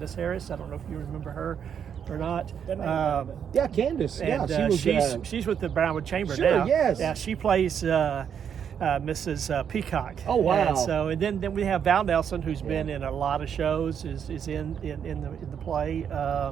Harris. I don't know if you remember her or not. Yeah, Candace. And Yeah, she was. she's with the Brownwood Chamber Sure, now. yes. Yeah, she plays Mrs. Peacock. Oh, wow. And then we have Val Nelson, who's been in a lot of shows, is in the play.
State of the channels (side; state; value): left; quieter; 8.0 dB